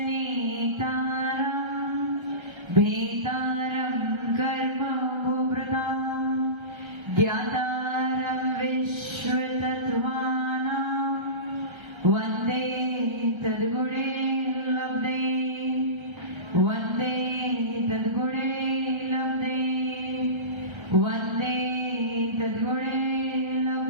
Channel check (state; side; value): late; left; 1.3 ms